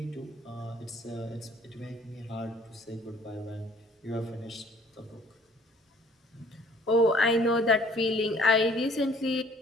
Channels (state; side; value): normal; both; correlation 0.56